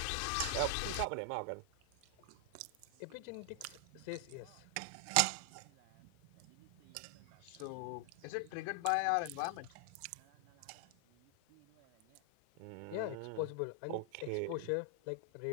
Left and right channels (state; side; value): different; both; correlation 0.00